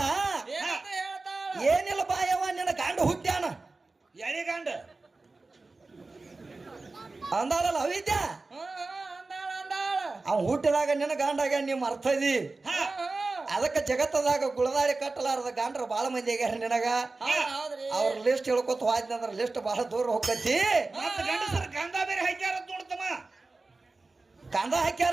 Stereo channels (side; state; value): left; quieter; 3.5 dB